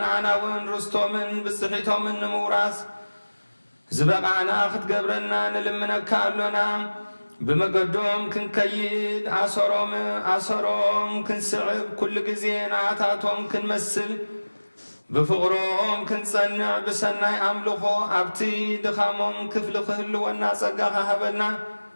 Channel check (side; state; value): both; inverted; correlation -1.00